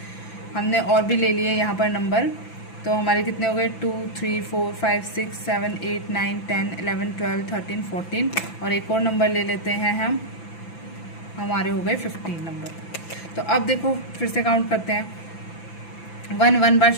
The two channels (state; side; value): late; right; 5.9 ms